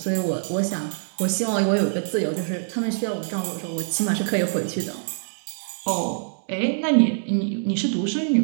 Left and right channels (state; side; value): silent; left; digital silence